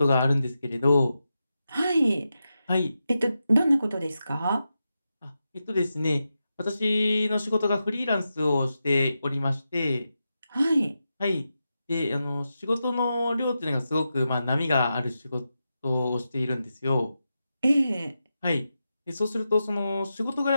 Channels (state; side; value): inverted; both; correlation -0.89